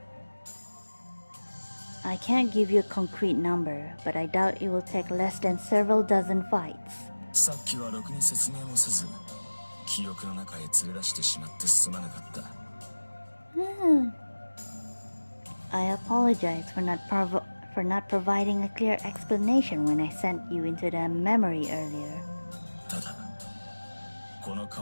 I can't give you a concrete number, but I doubt it will take less than several dozen fights. さっきはろくに説明もせず、記憶の中へ連れ出してしまってすまなかった。 I apologize for not providing a clear explanation when I sent you into the memory earlier. ただ、この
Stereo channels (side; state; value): both; inverted; correlation -1.00